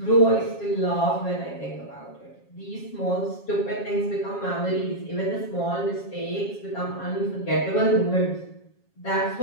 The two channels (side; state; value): right; late; 7.3 ms